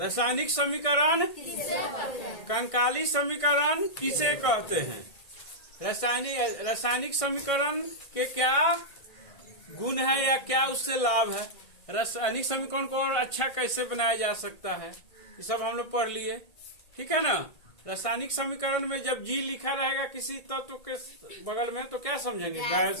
समीकरण कंकाली समीकरण किसे कहते हैं, रासायनिक समीकरण के क्या गुण है या क्या उससे लाभ है, रासायनिक समीकरण को और अच्छा कैसे बनाया जा सकता है, ये सब हम लोग पढ़ लिए। ठीक है ना। रासायनिक समीकरण में जब जी लिखा रहेगा किसी तत्व के बगल में तो क्या समझेंगे,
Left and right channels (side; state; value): right; late; 1.6 ms